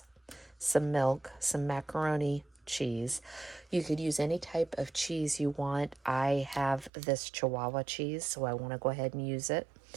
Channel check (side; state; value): left; drops out; at 6.9 s